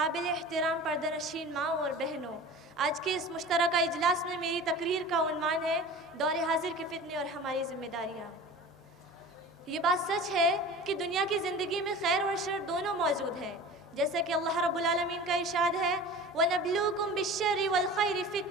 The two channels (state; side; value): normal; both; correlation 0.38